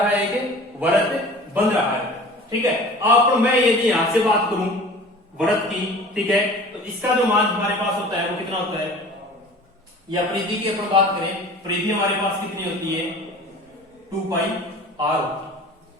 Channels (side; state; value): both; normal; correlation 0.42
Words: है, एक वृत्त बन रहा है, ठीक है। अब मैं यदि यहां से बात करूं वृत्त की, ठीक है, तो इसका जो मान हमारे पास होता है वो कितना होता है, या परिधि की अपन बात करें, परिधि हमारे पास कितनी होती है, 2 पाई आर होती है,